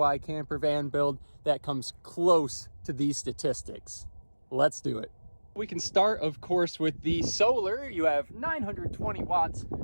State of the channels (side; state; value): both; inverted; correlation -1.00